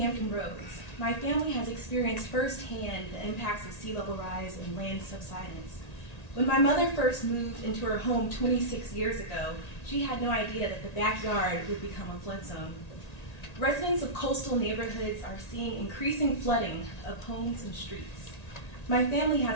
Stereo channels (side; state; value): right; late; 1.9 ms